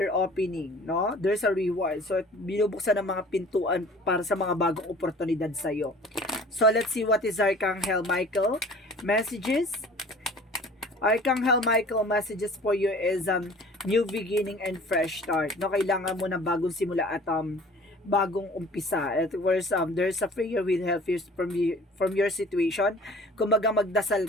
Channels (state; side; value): normal; both; correlation 0.47